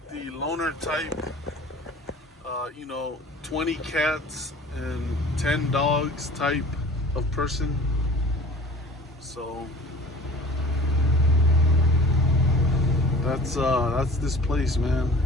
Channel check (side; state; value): both; normal; correlation 0.45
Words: the loner type. 20 cats and 10 dogs type of person. So that's this place, man.